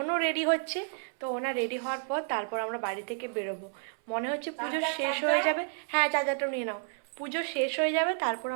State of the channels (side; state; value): left; silent; 57 dB below the other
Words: রেডি হচ্ছে। তো ওনার রেডি হওয়ার পর তারপর আমরা বাড়ি থেকে বেরোবো। মনে হচ্ছে পুজো শেষ হয়ে যাবে। হ্যাঁ, চার্জারটাও নিয়ে নাও। পুজো শেষ হয়ে যাবে, তারপর